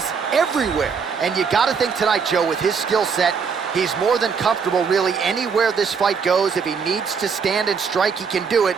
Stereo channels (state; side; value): quieter; left; 5.9 dB